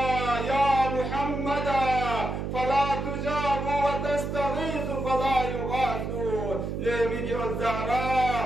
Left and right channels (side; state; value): right; noise; hum, 4 dB below the sound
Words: يا محمد فلا تجاب وتستغيث فلا يغاث لمجي